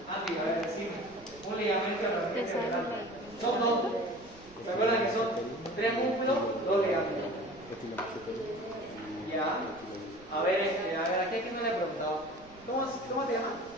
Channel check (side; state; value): right; noise; rumble, 23 dB below the sound